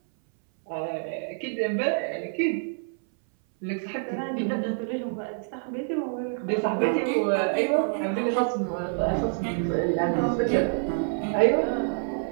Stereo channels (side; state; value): left; silent; 60 dB below the other